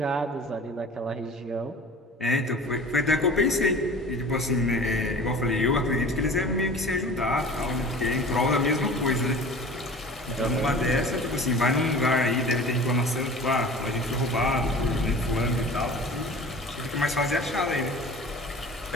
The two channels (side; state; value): both; normal; correlation 0.41